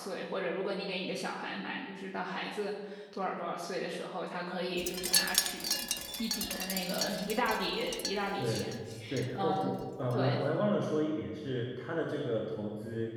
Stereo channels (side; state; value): both; identical; correlation 1.00